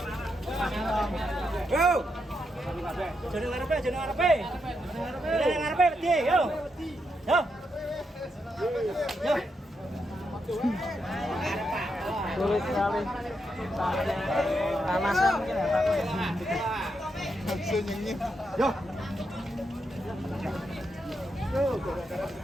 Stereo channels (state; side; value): normal; both; correlation 0.83